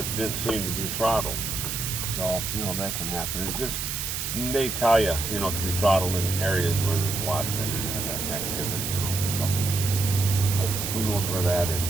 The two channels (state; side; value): noise; right; hiss, 3 dB below the sound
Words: didn't seem to be throttled. So that can happen. They tell you, it can be throttled in areas where there's a lot of internet activity. So who knows where that is,